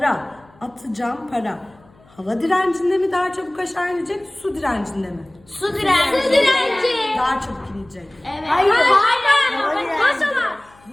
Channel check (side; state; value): left; noise; hum, 29 dB below the sound